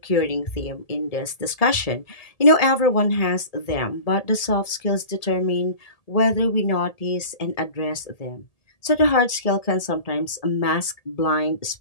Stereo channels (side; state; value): right; late; 1.7 ms